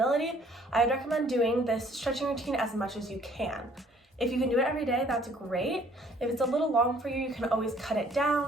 I would recommend doing this stretching routine as much as you can. If you can do it every day, that's great. If it's a little long for you, you can always cut it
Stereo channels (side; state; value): both; normal; correlation 0.59